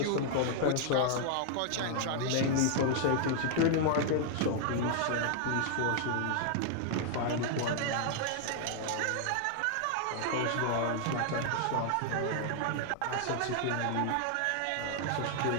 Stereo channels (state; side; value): different; both; correlation 0.00